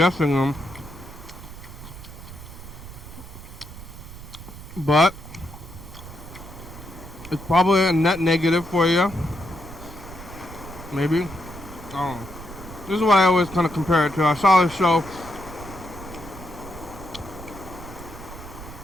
them. But it's probably a net negative for you. Maybe. I don't know. This is what I always kind of compare it to. I saw this show.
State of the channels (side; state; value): right; noise; rumble, 14 dB below the sound